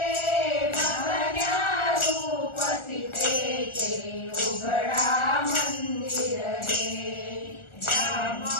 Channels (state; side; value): late; right; 1.4 ms